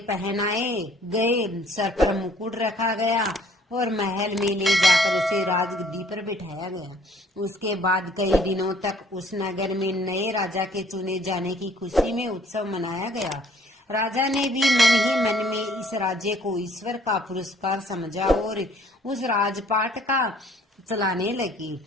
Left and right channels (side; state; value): both; normal; correlation 0.58